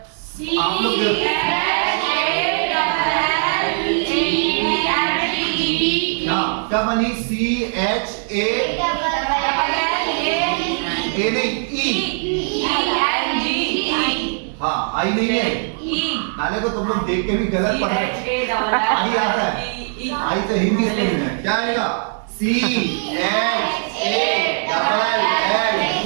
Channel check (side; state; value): left; silent; 66 dB below the other